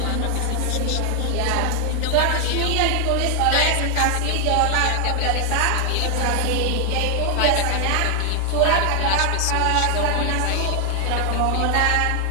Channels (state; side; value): different; both; correlation 0.00